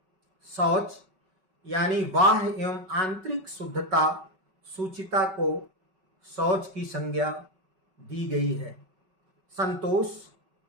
शौच यानी बाह्य एवं आंतरिक शुद्धता, शुचिता को शौच की संज्ञा दी गई है। संतोष,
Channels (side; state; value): left; late; 5.3 ms